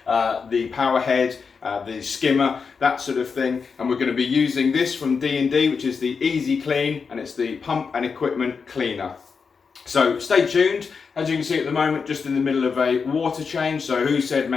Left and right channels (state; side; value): quieter; right; 5.4 dB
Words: the power head, the skimmer, that sort of thing. And we're going to be using this from D&D, which is the EzeClean, and it's the pump and equipment cleaner. So stay tuned. As you can see at the moment, just in the middle of a water change. So who said